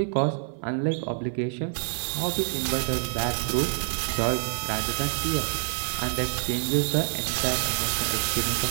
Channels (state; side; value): silent; left; 57 dB below the other